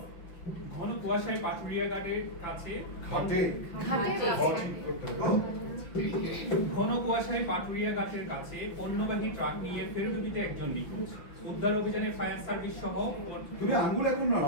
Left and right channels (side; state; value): right; late; 5.8 ms